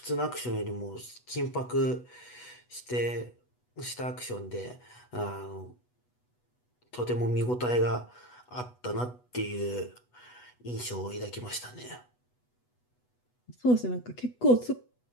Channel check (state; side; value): late; right; 8.1 ms